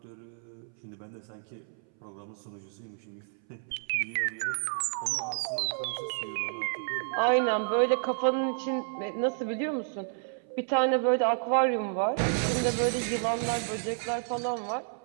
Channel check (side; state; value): left; silent; 57 dB below the other